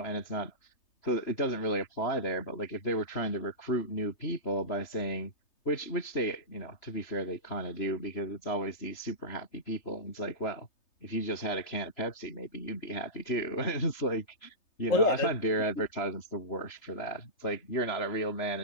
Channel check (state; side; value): late; right; 3.3 ms